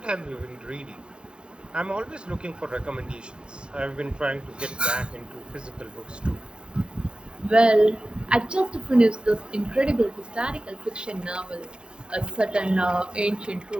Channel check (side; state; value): left; late; 0.051 ms